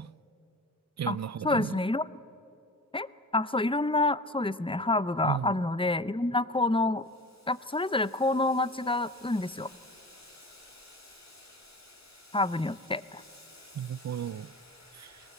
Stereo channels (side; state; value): both; normal; correlation 0.35